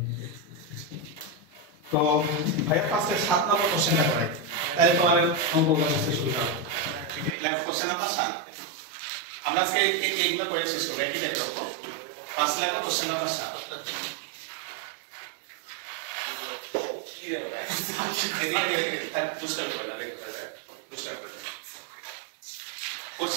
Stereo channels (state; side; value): drops out; left; at 7.4 s